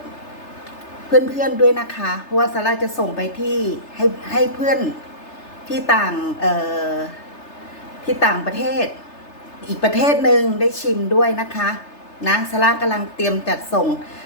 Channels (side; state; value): right; late; 3.3 ms